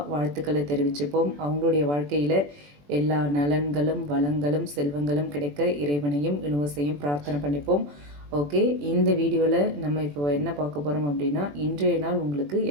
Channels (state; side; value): late; left; 21 ms